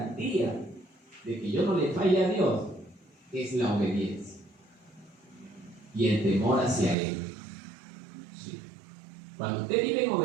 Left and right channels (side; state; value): left; drops out; at 7.0 s